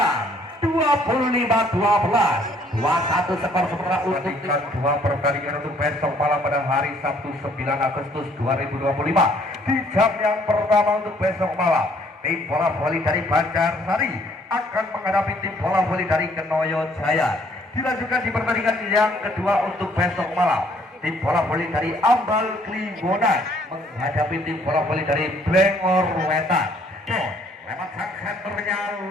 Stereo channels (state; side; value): normal; both; correlation 0.62